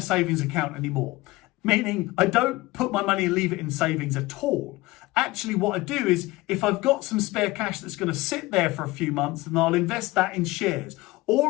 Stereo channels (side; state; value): right; quieter; 19.9 dB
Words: savings account anymore. Meaning I don't put my money and leave it in savings at all. Actually, what I do is if I've got some spare cash that's going to sit there for a few months, then I'll invest that in shares.